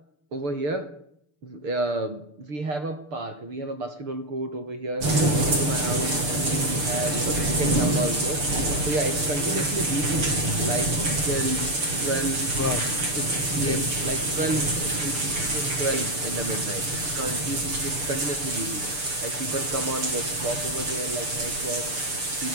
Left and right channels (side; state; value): left; late; 6.8 ms